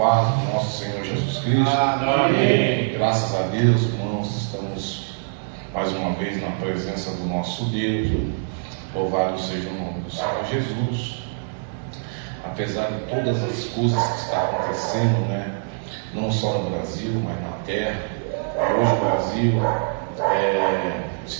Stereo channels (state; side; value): silent; left; digital silence